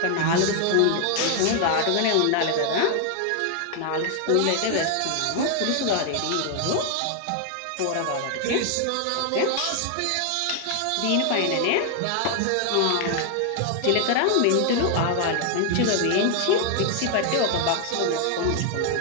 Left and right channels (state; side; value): different; both; correlation 0.00